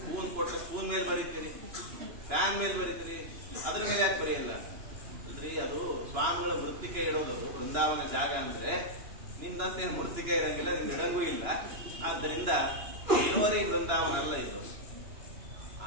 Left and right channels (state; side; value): late; left; 2.9 ms